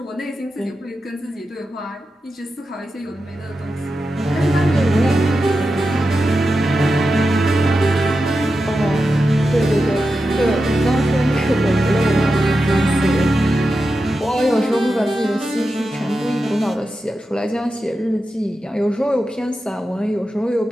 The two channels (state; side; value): normal; both; correlation 0.90